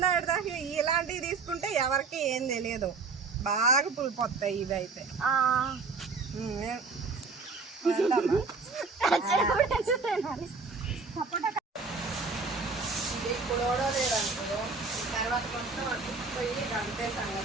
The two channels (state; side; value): quieter; left; 4.4 dB